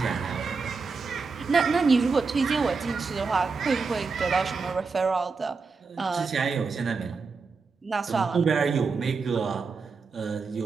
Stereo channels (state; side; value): quieter; left; 4.7 dB